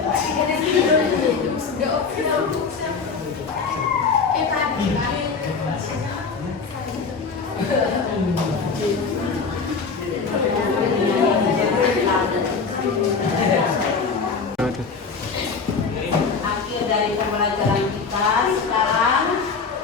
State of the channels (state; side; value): quieter; right; 5.1 dB